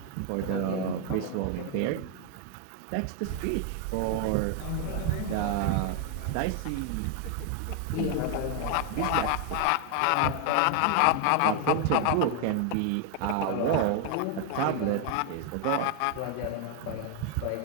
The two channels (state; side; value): different; both; correlation 0.01